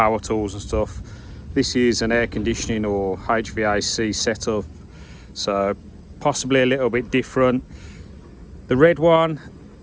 tools and stuff. This is an air conditioning or HVAC setup, so possibly a little bit different. The red one,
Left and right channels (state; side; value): identical; both; correlation 1.00